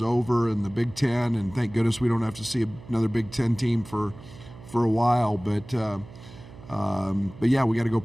over in the Big Ten, and thank goodness we don't have to see another Big Ten team for a while. But yeah, we got to go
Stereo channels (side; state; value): right; noise; hum, 18 dB below the sound